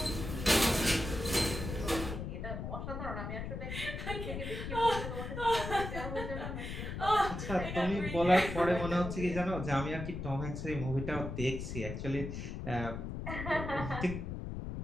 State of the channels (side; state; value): left; noise; rumble, 6 dB below the sound